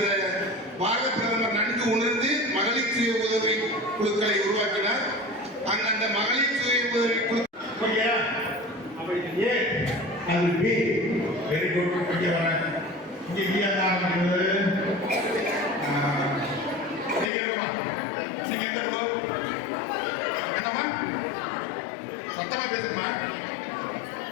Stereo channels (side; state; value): right; drops out; at 17.3 s